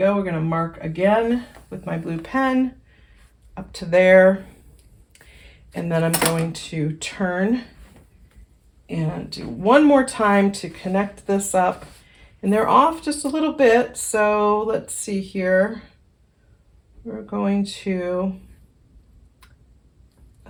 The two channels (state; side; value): identical; both; correlation 1.00